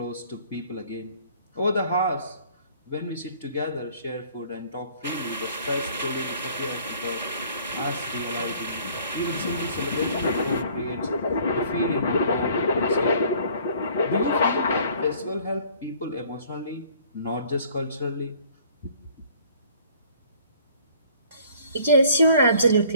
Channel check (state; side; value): inverted; both; correlation -0.56